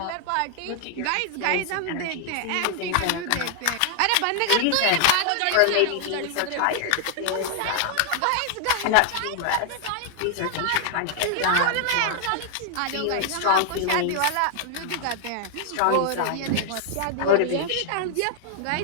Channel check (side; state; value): both; different; correlation 0.00